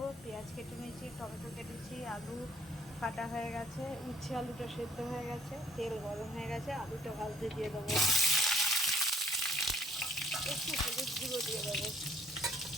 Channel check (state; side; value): normal; both; correlation 0.61